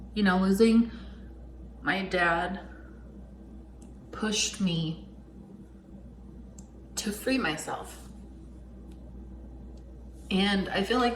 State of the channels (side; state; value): both; identical; correlation 1.00